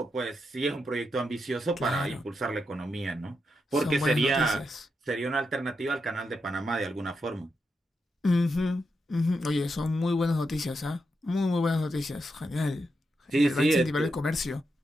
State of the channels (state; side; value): normal; both; correlation 0.85